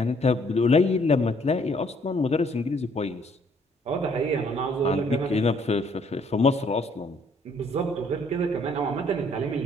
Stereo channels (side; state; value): both; normal; correlation 0.64